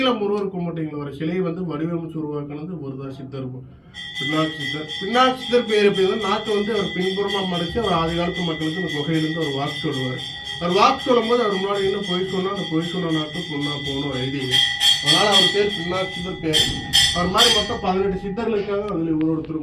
முருகர் கும்பிட்டீங்களா ஒரு சிலையை வந்து வடிவமைச்சு உருவாக்குனது ஒருதான் சித்தர், பின்னாட்சி சித்தர். பின்னாட்சி சித்தர் பேர் எப்படி நாட்டை வந்து அவர் பின்புறமா மறைச்சு அவர் ஆதி காலத்து மக்களுக்கு அந்த குகையிலிருந்து ஒரு வாக்கு சொல்லுவார். அவர் வாக்கு சொல்லும் போது அவர் முன்னாடி என்ன பொய் சொன்னா அந்த பொய் சொன்ன நாட்டு பொண்ணா போகணும் ஒரு ஐதீகம். அதனால அவர் பேர் பின்னாட்சி சித்தர் பேர். அவர் மாதிரி மொத்தம் 18 சித்தர்கள் இருக்காங்க. அதுல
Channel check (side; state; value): both; identical; correlation 1.00